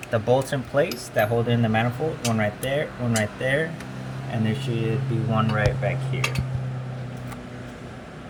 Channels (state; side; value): identical; both; correlation 1.00